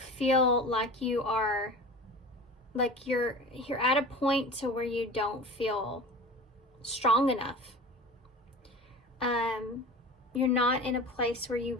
like you are, like you're at a point to where you don't feel strong enough. You're not in a place where you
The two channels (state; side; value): normal; both; correlation 0.36